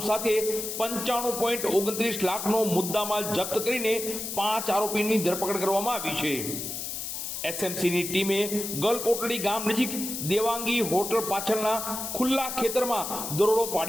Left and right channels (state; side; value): noise; left; hiss, 5 dB below the sound